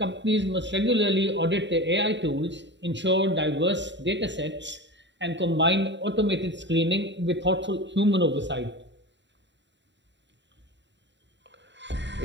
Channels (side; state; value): left; late; 0.52 ms